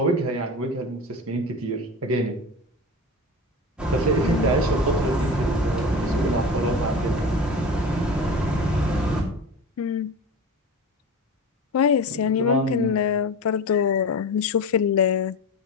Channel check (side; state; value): both; normal; correlation 0.29